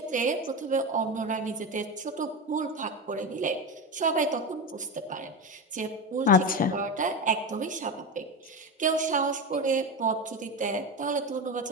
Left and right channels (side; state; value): both; normal; correlation 0.19